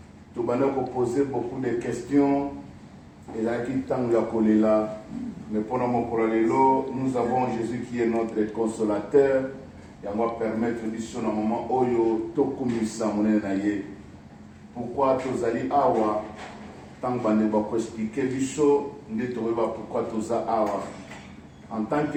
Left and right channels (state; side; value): identical; both; correlation 1.00